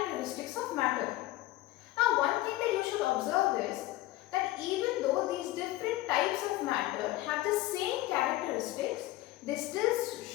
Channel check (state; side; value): quieter; right; 16.8 dB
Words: of matter. Now, one thing that you should observe is that even though these different types of matter have the same characteristics, they still